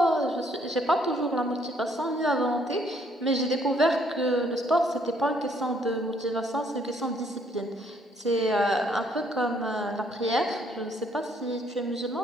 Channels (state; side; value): normal; both; correlation 0.66